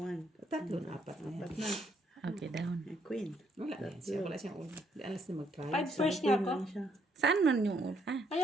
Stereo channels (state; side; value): normal; both; correlation 0.71